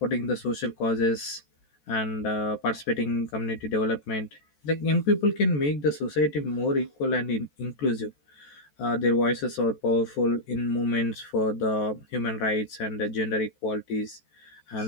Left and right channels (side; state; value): right; late; 14 ms